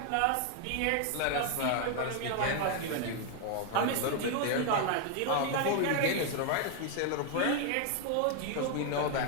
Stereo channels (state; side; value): different; both; correlation 0.01